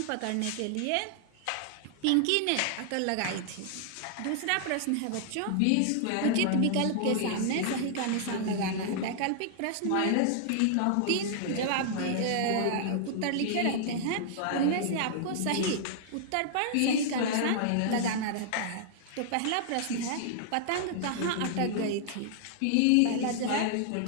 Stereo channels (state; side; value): different; both; correlation -0.01